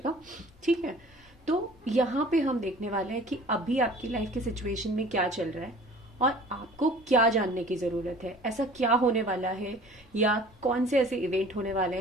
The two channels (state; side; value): normal; both; correlation 0.47